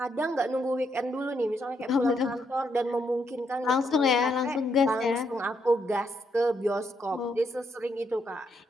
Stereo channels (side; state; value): both; normal; correlation 0.77